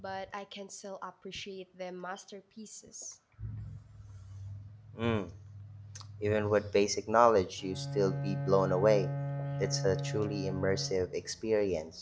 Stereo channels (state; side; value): identical; both; correlation 1.00